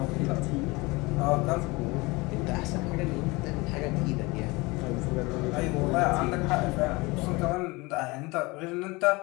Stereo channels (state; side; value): quieter; right; 24.1 dB